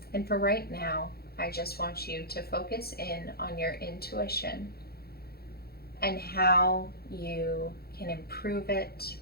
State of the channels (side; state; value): right; late; 0.45 ms